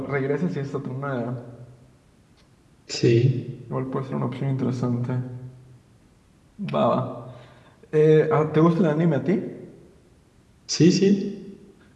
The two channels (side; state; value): both; identical; correlation 1.00